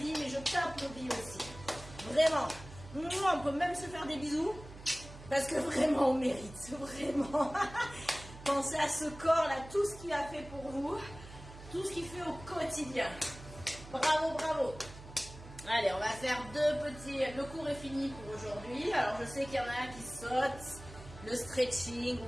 mais je t'applaudis aussi. Vraiment. On peut même se faire des bisous parce que vraiment on mérite. Vraiment. Pensez à ce corps-là, tout ce qu'il a fait pour vous, tout ce qu'il fait au quotidien. Bravo, bravo. Allez, on va faire deux petits... Le cours est fini pour aujourd'hui. Alors je sais qu'il y en a qui sautent. Le stretching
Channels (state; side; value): noise; right; hum, 16 dB below the sound